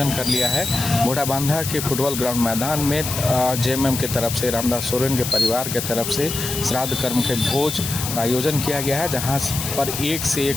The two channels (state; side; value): noise; left; hiss, 5 dB below the sound